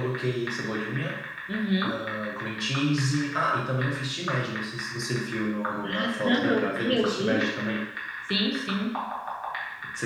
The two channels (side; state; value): both; identical; correlation 1.00